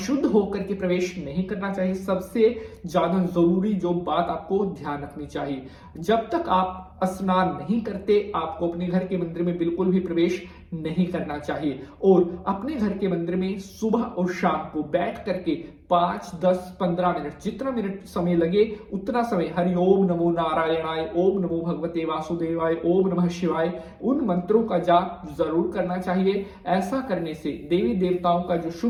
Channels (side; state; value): both; identical; correlation 1.00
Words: होकर के प्रवेश नहीं करना चाहिए। सबसे ज्यादा जरूरी जो बात आपको ध्यान रखनी चाहिए, जब तक आप स्नान नहीं करते आपको अपने घर के मंदिर में बिल्कुल भी प्रवेश नहीं करना चाहिए। और अपने घर के मंदिर में सुबह और शाम को बैठ करके 5, 10, 15 मिनट, जितना मिनट समय लगे उतना समय हरि ओम नमो नारायणाय, ओम नमो भगवते वासुदेवाय, ओम नमः शिवाय, उन मंत्रों का जाप जरूर करना चाहिए। ऐसा करने से देवी देवताओं का जो